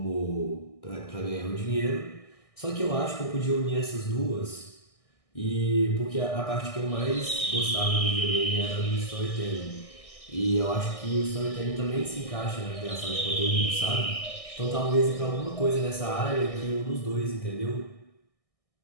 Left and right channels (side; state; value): right; late; 1.6 ms